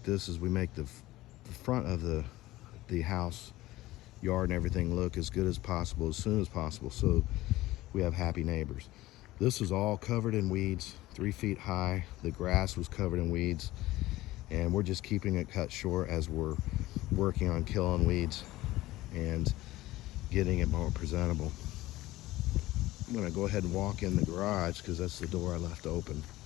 this, is we make the front of the house, yard and everything look as good as possible, as soon as possible, so we have happy neighbors. This is all covered in weeds, 3 feet high. The grass was covered in weeds, and we're just keeping it cut short as we're working on killing weeds and getting it more presentable. I'm gonna go ahead and walk in the garage because that's the door I left open.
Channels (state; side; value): quieter; right; 17.3 dB